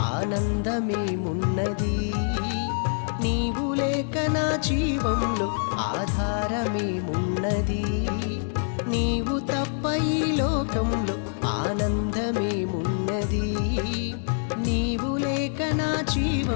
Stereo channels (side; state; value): right; silent; digital silence